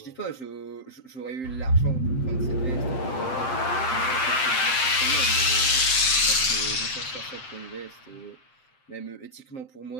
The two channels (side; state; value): right; late; 7.7 ms